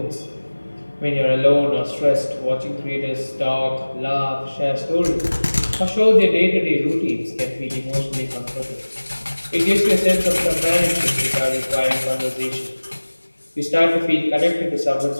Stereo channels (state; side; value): inverted; both; correlation -1.00